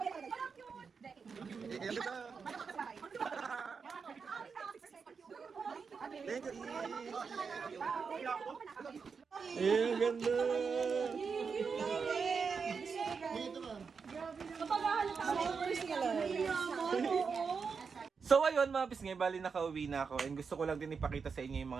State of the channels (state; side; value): quieter; left; 5.5 dB